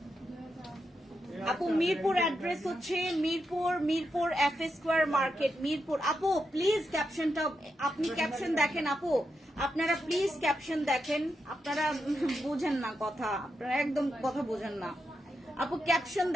আপু মিরপুর অ্যাড্রেস হচ্ছে Mirpur FA square market, Mirpur. আপু প্লিজ ক্যাপশনটা আপনি ক্যাপশন দেখেন আপু, আপনারা প্লিজ ক্যাপশন দেখেন। আপনারা বুঝেন না কথা, আপনারা একদম কথা বোঝেন না। আপু ক্যাপশন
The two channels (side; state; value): both; normal; correlation 0.85